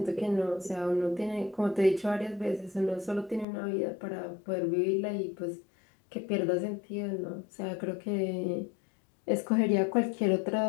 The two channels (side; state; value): right; drops out; at 3.5 s